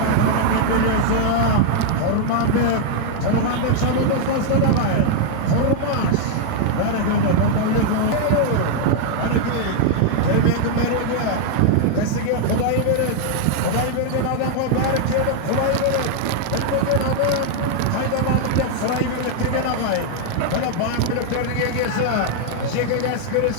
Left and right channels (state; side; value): different; both; correlation 0.00